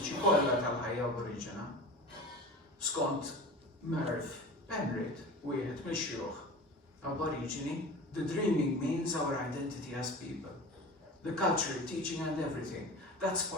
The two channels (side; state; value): both; normal; correlation 0.35